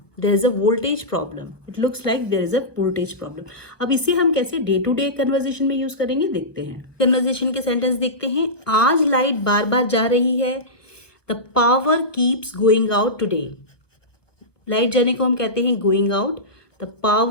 there is a voltage problem, it looks like there is a voltage problem। अब इसे हम कैसे day to day conversation में use करेंगे देखते हैं। Conversation के sentence देखते हैं। आज लाइट बार बार जा रही है, the power keeps going out today, light जाने को हम कहते हैं going out, the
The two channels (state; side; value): late; right; 1.1 ms